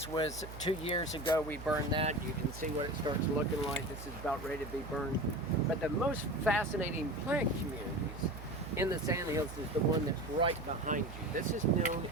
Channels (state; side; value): noise; right; hum, 12 dB below the sound